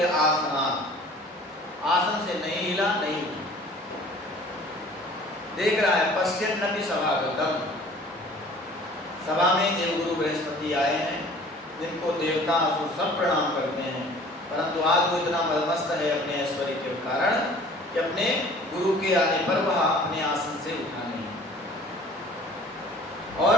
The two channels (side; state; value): both; normal; correlation 0.49